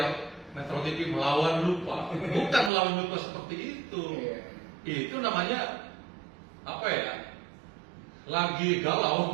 Metro TV melawan lupa. Bukan melawan lupa seperti itu. Itu namanya apa ya? Lagi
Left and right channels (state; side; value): drops out; left; at 2.7 s